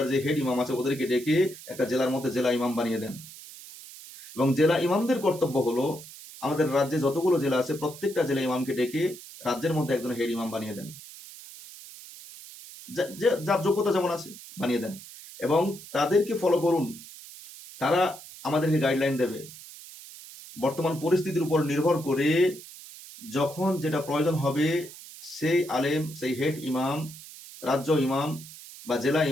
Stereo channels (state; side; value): noise; right; hiss, 16 dB below the sound